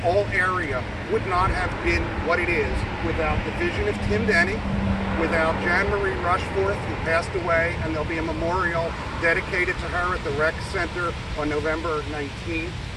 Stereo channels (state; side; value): identical; both; correlation 1.00